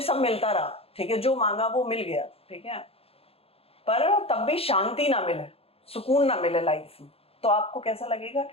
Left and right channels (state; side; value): late; right; 0.28 ms